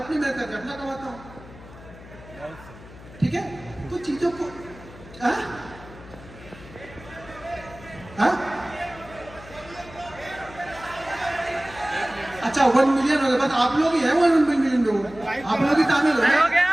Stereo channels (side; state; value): left; noise; hum, 18 dB below the sound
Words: मेहनत करके अपना कमाता हूँ, ठीक है? तो चीजों को हाँ? अच्छा 1 मिलियन हो गए, बस आप लोग ही हैं 1 मिलियन लोग, आप लोग ही शामिल हो गए। हो गया।